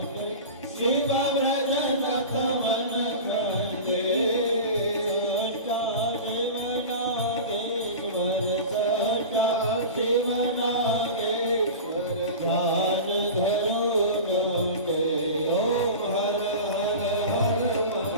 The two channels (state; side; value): inverted; both; correlation -0.31